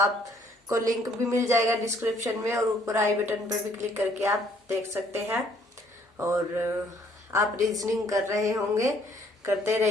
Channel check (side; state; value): both; normal; correlation 0.63